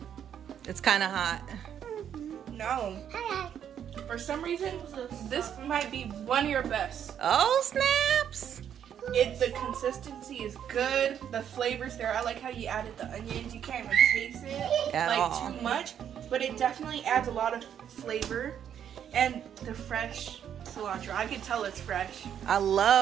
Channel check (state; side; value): quieter; left; 9.1 dB